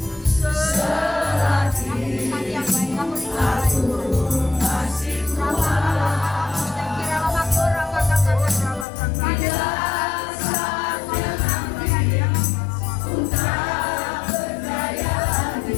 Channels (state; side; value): drops out; right; at 8.8 s